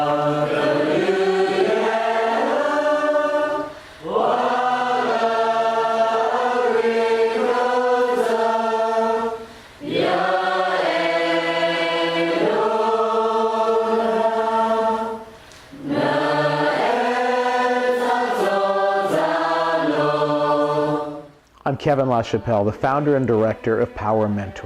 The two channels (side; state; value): both; identical; correlation 1.00